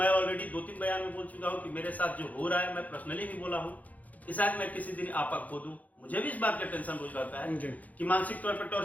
ऑलरेडी 2-3 बयान में बोल चुका हूँ कि मेरे साथ जो हो रहा है, मैं पर्सनली भी बोला हूँ कि शायद मैं किसी दिन आपा खो दूं। मुझे भी इस बात का टेंशन रोज रहता है कि मानसिक तौर पर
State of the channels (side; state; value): right; late; 0.077 ms